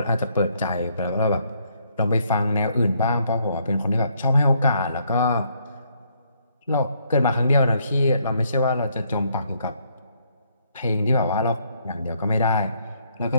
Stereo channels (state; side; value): inverted; both; correlation -0.71